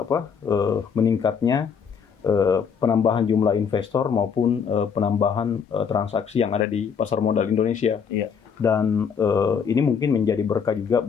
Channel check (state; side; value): quieter; right; 6.7 dB